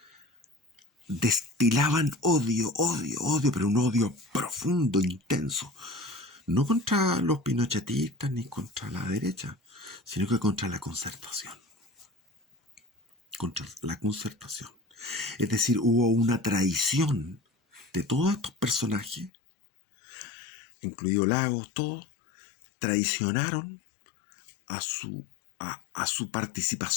destilaban odio, pero un odio profundo, intenso. No contra los pinochetistas ni contra la derecha, sino que contra la concertación. Contra la concertación. Es decir, hubo una traición de todos estos personajes, incluido Lagos, todos, traicionaron a su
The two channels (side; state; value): right; drops out; at 19.3 s